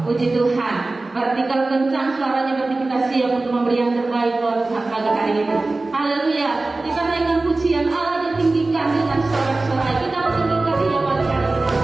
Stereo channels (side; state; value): left; quieter; 3.2 dB